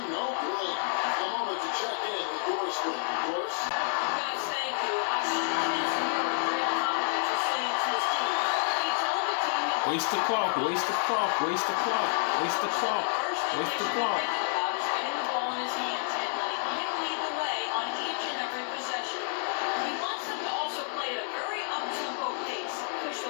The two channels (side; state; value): right; silent; digital silence